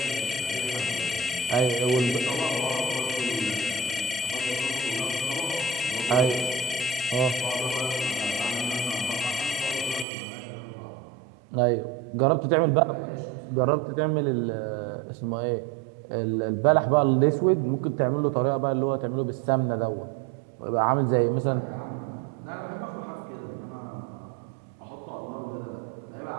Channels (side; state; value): left; drops out; at 10.1 s